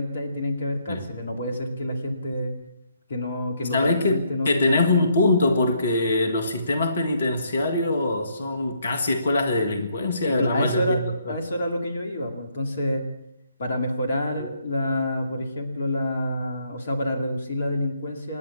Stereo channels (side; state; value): both; inverted; correlation -0.71